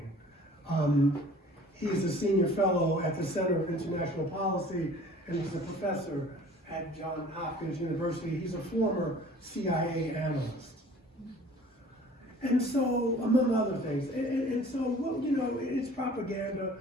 He is a senior fellow at the Center of International Policy, and he's a professor at Johns Hopkins University. He's a former CIA analyst. And so, among other things, and so, well, you know, it's propaganda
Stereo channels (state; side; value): normal; both; correlation 0.48